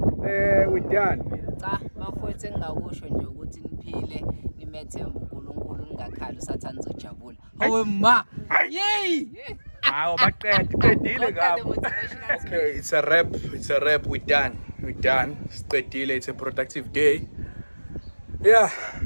with Dan. Cha, bafowethu engingakusho nje ukuthi niphile nimethemba uNkulunkulu ningakhali usathana uzojabula. Hawe ma. Yey! Hawo baqedile ngapha. Okay, it's a rap. We're done. Siqedile. It's a productive day. Yeah.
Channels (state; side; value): inverted; both; correlation -1.00